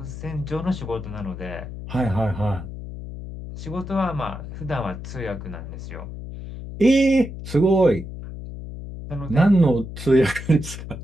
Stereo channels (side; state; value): left; noise; hum, 10 dB below the sound